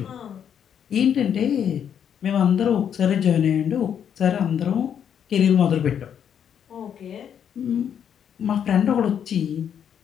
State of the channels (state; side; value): quieter; right; 8.6 dB